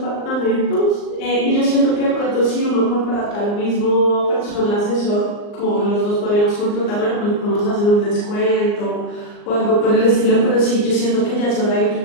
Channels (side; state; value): right; late; 39 ms